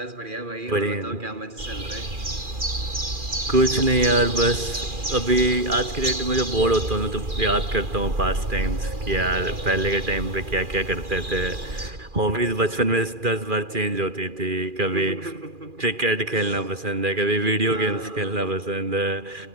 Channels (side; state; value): left; late; 2.4 ms